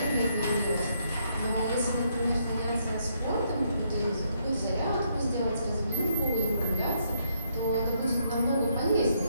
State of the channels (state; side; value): inverted; both; correlation -0.74